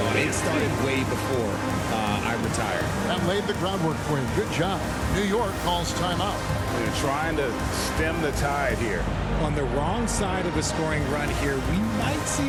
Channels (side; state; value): both; identical; correlation 1.00